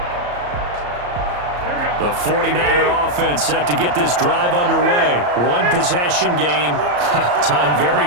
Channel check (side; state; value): left; late; 34 ms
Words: The 49er offense set to get this drive underway. One possession game. Time very